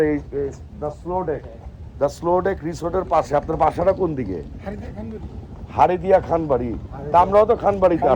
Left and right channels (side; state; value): both; identical; correlation 1.00